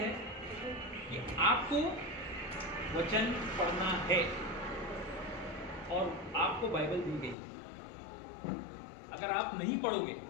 कि आपको वचन पढ़ना है, और आपको बाइबल दी गई। अगर आप नहीं पढ़ोगे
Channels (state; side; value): drops out; right; at 7.4 s